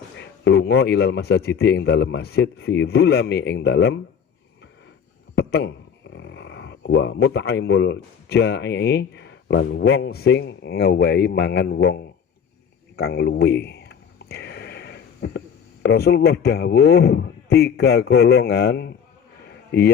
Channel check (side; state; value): right; quieter; 7.4 dB